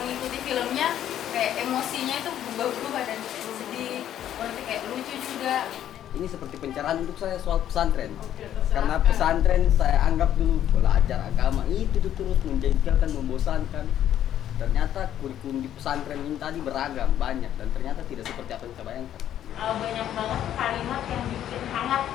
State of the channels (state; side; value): quieter; right; 11.0 dB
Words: filmnya, kayak emosinya itu berubah-ubah dan sedih, berarti kayak lucu juga. Ini seperti pencerahan untuk saya soal pesantren. Karena pesantren saya anggap dulu belajar agama itu tuh terus menjengkelkan, membosankan. Ternyata kurikulum di pesantren ini tadi beragam, banyak, dan ternyata tidak seperti apa yang kita bayangkan. Banyak banget kalimat yang bikin hangat